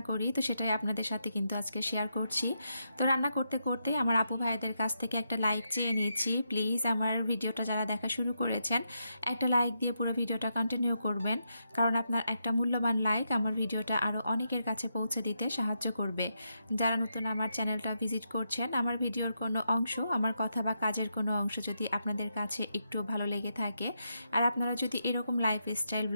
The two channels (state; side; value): inverted; both; correlation -0.82